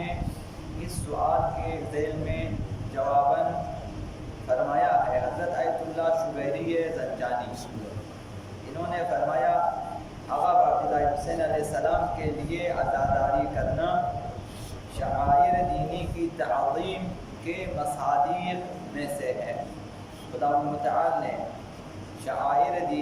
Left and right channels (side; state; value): both; identical; correlation 1.00